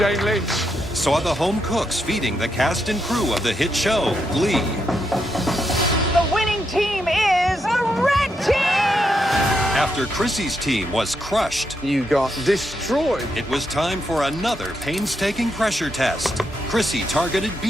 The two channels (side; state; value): both; normal; correlation 0.81